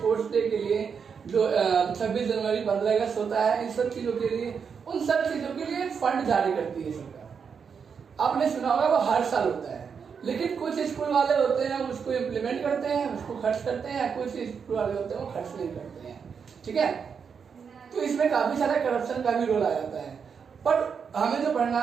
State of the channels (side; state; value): left; quieter; 6.4 dB